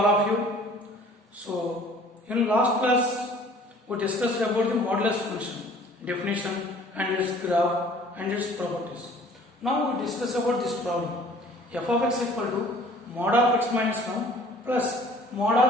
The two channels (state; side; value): normal; both; correlation 0.52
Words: of you. So in last class we discussed about the modulus function, definition and its graph and its properties. Now we discuss about this problem. F of x equal to mod of x minus 1 plus mod